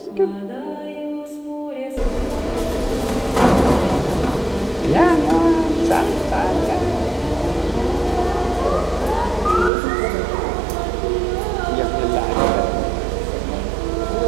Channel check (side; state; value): left; drops out; at 9.7 s